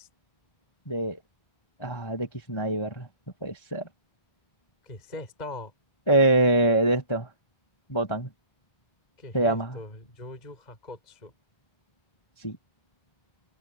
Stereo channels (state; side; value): late; right; 1.3 ms